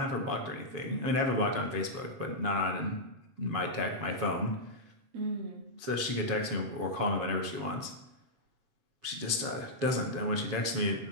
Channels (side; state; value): left; late; 7.2 ms